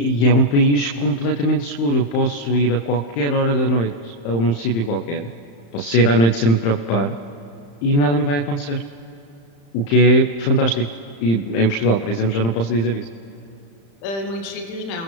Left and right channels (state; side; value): late; right; 35 ms